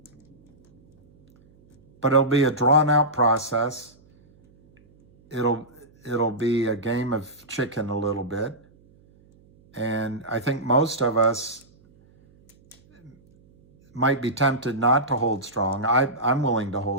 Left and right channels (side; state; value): right; noise; hum, 30 dB below the sound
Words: But it'll be a drawn-out process. It'll be a game of chicken a little bit. And I think most of us might be tempted not to hold strong. I'm willing to